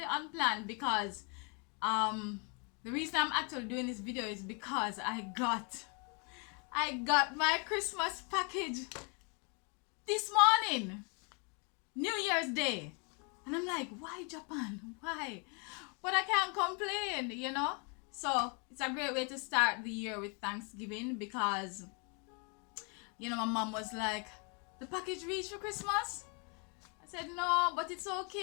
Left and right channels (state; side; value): quieter; right; 35.1 dB